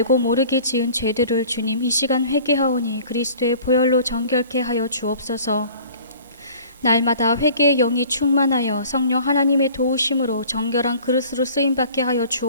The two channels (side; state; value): both; inverted; correlation -0.48